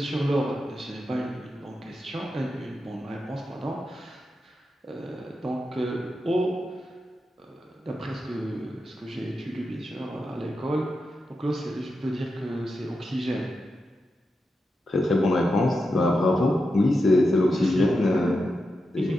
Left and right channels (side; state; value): both; normal; correlation 0.88